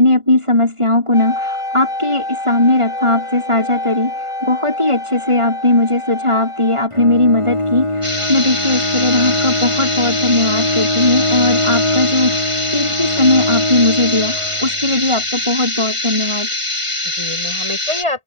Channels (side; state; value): left; late; 1.5 ms